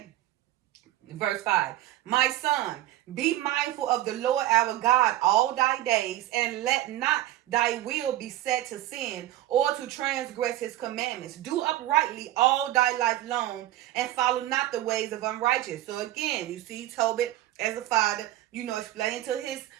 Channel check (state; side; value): quieter; left; 14.6 dB